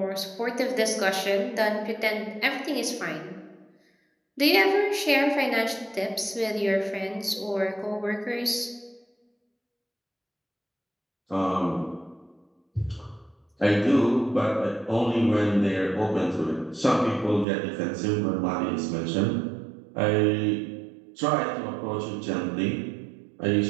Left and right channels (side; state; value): left; drops out; at 17.4 s